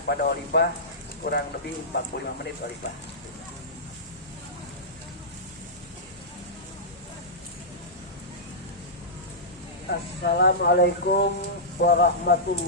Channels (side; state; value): both; normal; correlation -0.14